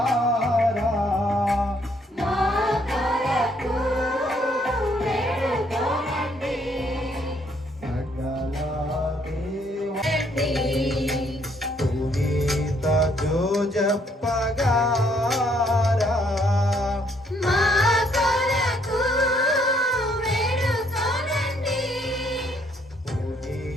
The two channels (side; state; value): both; normal; correlation 0.68